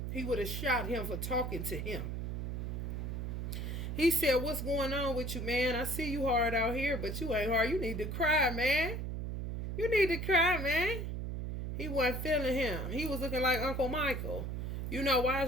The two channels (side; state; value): right; noise; hum, 4 dB below the sound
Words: he would have shot him for talking to him. He said, what's going on with you, man? I see you hard out here, but you ain't hard. You need to cry, man. You need to cry, man. He wasn't feeling him. He was looking like Uncle Michael. You know, why